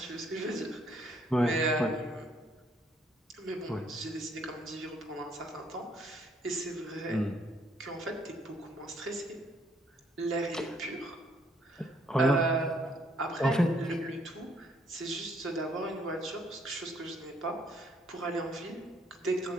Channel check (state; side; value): normal; both; correlation 0.67